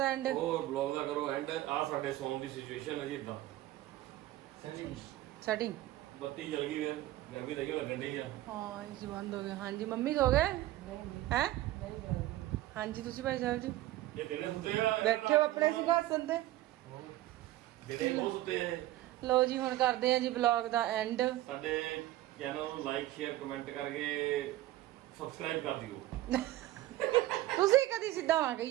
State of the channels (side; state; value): left; quieter; 15.7 dB